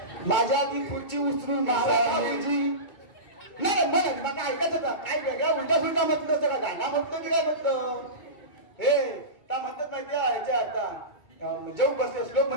माझ्या ती खुर्ची उचलून भाऊजी. नाही म्हणत मग ऐकायचं का काय वेगळा उलटा फुलटा म्हटलं होतं का गाणं म्हणतो की काय म्हणतो हे का म्हणतात माहिती ह्याच्या आता जेव बसले श्लोक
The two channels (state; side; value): late; right; 2.2 ms